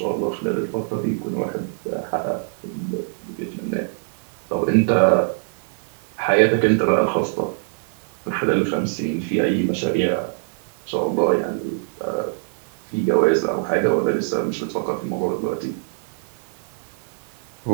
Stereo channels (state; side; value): silent; left; digital silence